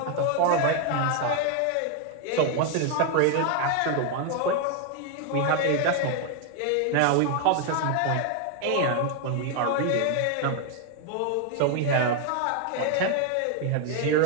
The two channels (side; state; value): both; different; correlation 0.01